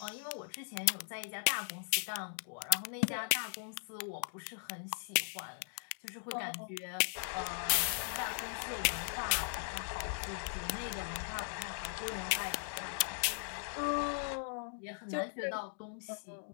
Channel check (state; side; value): silent; right; digital silence